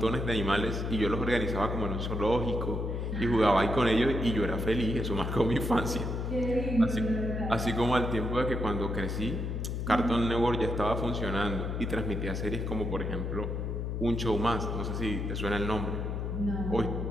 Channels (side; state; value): left; noise; hum, 2 dB below the sound